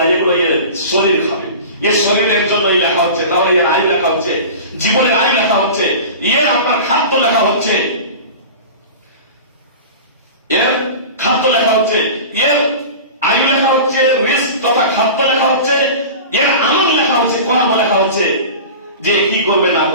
এগুলো এর শরীর খাবে। এর শরীরের জন্যই লেখা হচ্ছে, তাহলে এর আয়ু লেখা হচ্ছে, জীবনের আয়ু লেখা হচ্ছে, এর আপনার খাদ্য লেখা হচ্ছে, এর খাদ্য লেখা হচ্ছে, এর আয়ু লেখা হচ্ছে, রিস্ক তথা খাদ্য লেখা হচ্ছে, এর আমল লেখা হচ্ছে, কর্ম লেখা হচ্ছে, যে কি করবে না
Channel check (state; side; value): inverted; both; correlation -0.34